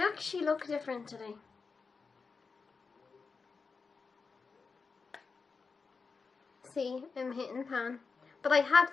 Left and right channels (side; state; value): right; quieter; 4.8 dB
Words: actually look different today. See, I'm hitting pan. But I had